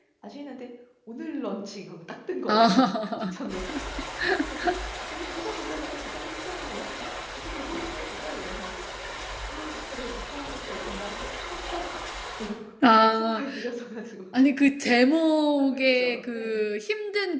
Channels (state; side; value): identical; both; correlation 1.00